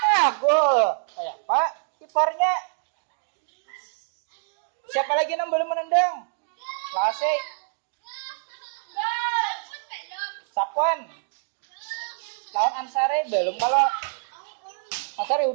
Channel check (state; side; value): silent; left; digital silence